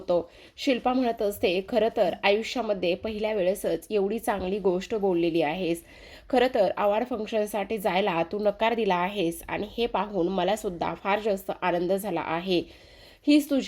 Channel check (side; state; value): both; identical; correlation 1.00